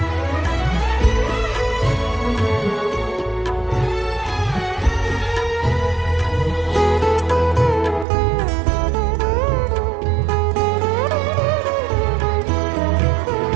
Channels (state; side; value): drops out; left; at 8.1 s